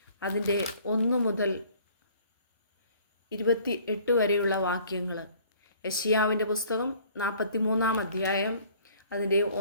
അതിൻ്റെ 1 മുതൽ 28 വരെയുള്ള വാക്യങ്ങൾ. യെശയ്യാവിൻ്റെ പുസ്തകം 43 അധ്യായം അതിൻ്റെ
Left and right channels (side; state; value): both; inverted; correlation -0.55